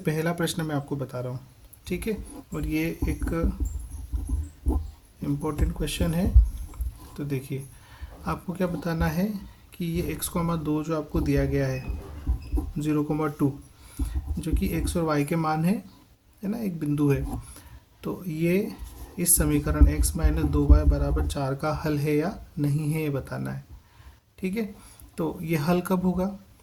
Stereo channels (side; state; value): both; identical; correlation 1.00